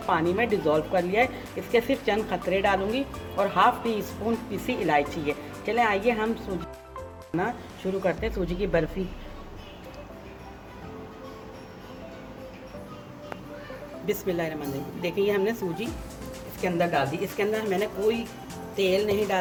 पानी में डिज़ोल्व कर लिया है। इसके सिर्फ चंद खतरे डालूँगी और हाफ़ टी स्पून पिसी इलायची है। चलें आइए हम सूजी बनाना शुरू करते हैं। सूजी की बर्फ़ी बिस्मिल्लाहिर्रहमानिर्रहीम। देखिए ये हमने सूजी इसके अंदर डाल दी। इसके अंदर मैंने कोई तेल नहीं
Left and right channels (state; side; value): identical; both; correlation 1.00